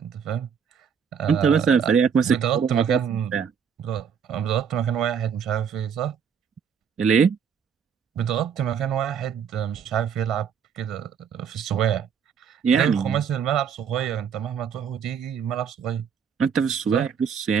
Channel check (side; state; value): left; quieter; 7.1 dB